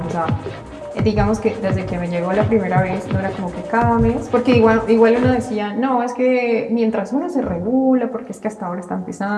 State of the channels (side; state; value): both; identical; correlation 1.00